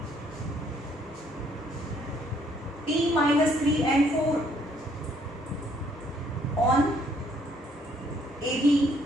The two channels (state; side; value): normal; both; correlation 0.66